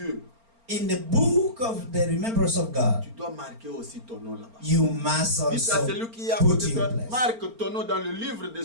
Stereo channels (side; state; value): left; late; 4.3 ms